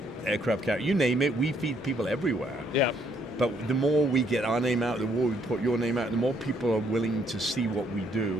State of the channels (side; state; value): both; normal; correlation 0.69